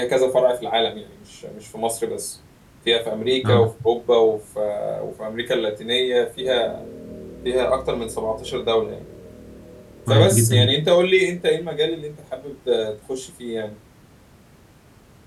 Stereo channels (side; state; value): both; identical; correlation 1.00